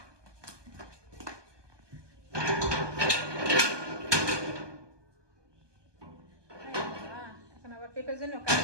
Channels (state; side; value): late; left; 1.2 ms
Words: এখন আবার পেঁপের জন্য কাজ